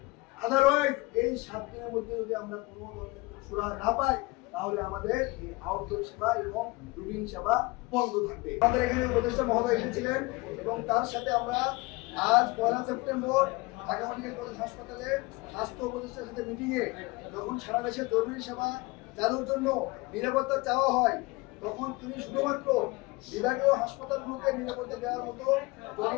আদারওয়াইজ এই 7 দিনের মধ্যে যদি আমরা কোনো ধরনের সুরাহা না পাই তাহলে আমাদের এই আউটডোর সেবা এবং রুটিন সেবা বন্ধ থাকবে। আমাদের এখানে উপদেষ্টা মহোদয় এসেছিলেন এবং তার সাথে আমরা আজ 1 সেপ্টেম্বর ঢাকা মেডিকেল কলেজ হাসপাতালে স্বাস্থ্য উপদেষ্টার সাথে মিটিংয়ে যখন সারা দেশে জরুরি সেবা চালুর জন্য নিরাপত্তা চাওয়া হয় তখন তিনি শুধুমাত্র বিভাগীয় হাসপাতালগুলোকে নিরাপত্তা দেওয়ার মতো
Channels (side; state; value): right; quieter; 23.8 dB